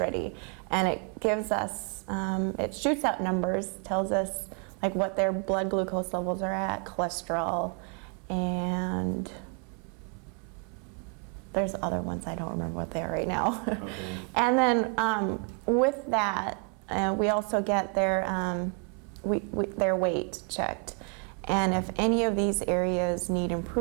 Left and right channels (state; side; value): quieter; left; 36.2 dB